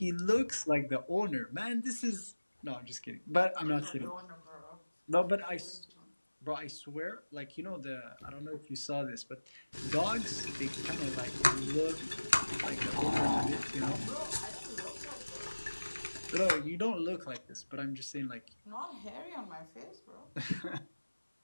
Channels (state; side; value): inverted; both; correlation -1.00